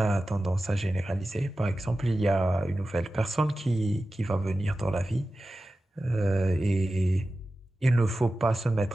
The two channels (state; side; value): normal; both; correlation 0.94